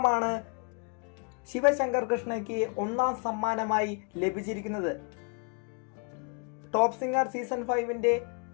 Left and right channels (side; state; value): right; quieter; 36.2 dB